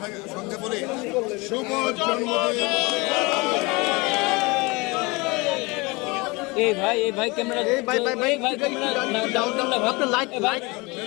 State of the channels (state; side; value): quieter; right; 25.6 dB